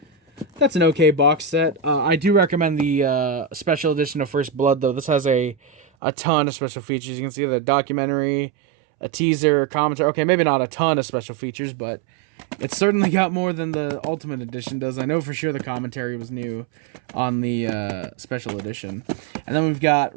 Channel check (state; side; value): drops out; left; at 5.9 s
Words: That's an okay box set. I do recommend the special edition of First Blood, though. This has a ton of special features. You can see the documentary, a teaser, commentary. Okay, maybe not a ton of special features, but it's certainly got more than the Ultimate Edition does. I know for sure the commentary was new on the special edition. And then we've